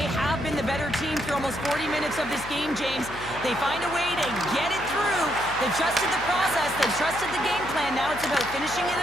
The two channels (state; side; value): noise; left; hum, 13 dB below the sound